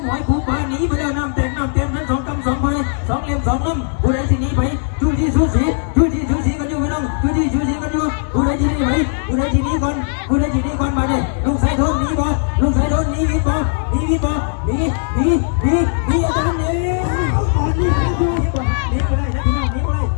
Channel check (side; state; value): right; silent; digital silence